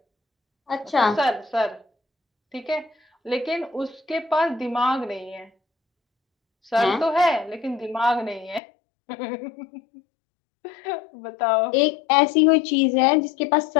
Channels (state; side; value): drops out; right; at 8.6 s